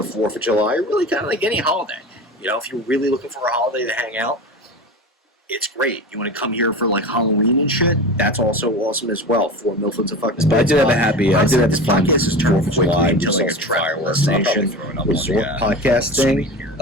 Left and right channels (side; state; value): both; normal; correlation 0.30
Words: 4th of July, really kind of like any holiday. You know, if you're really looking for a holiday to hang out, it's great. You want to come here for like Halloween and shit? That's also awesome as well. 4 Milford's a fucking. But I did have this podcast is 4th of July, just like a travel destination resort podcast thing